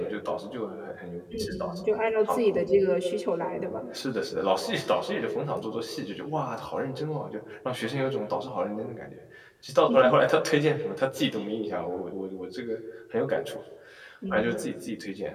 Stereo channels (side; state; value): both; identical; correlation 1.00